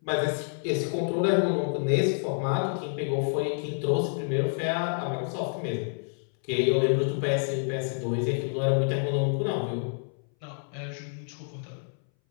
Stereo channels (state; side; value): silent; right; 59 dB below the other